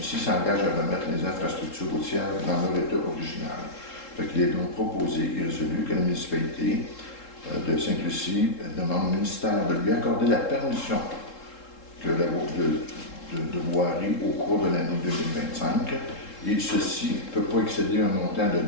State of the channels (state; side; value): late; right; 3.7 ms